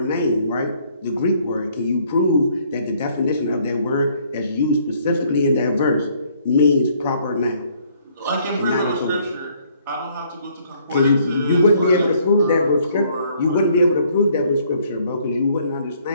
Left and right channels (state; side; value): inverted; both; correlation -0.64